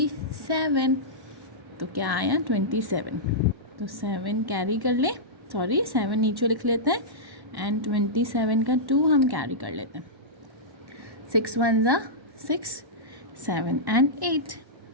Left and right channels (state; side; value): late; left; 1.1 ms